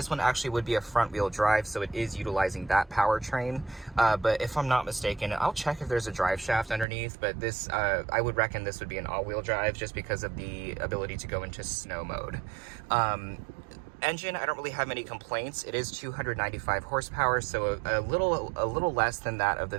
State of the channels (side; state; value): left; drops out; at 6.9 s